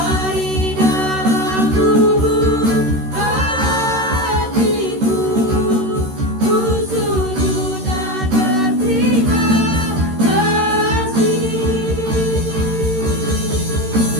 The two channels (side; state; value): left; late; 13 ms